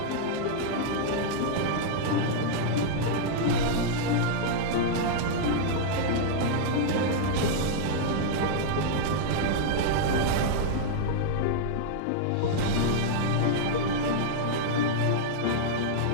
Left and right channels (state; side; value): different; both; correlation -0.01